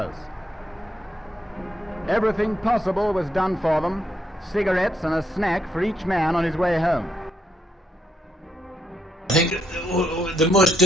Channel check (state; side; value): normal; both; correlation 0.77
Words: Everything possible was done for them, cigarettes and a snack for each man on his way home. I think the most